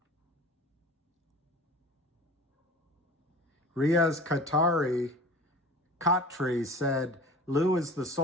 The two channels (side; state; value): both; normal; correlation 0.39